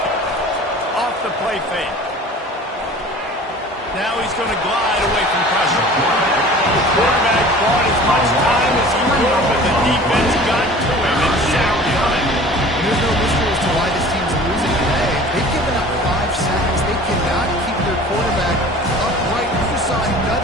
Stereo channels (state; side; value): normal; both; correlation 0.44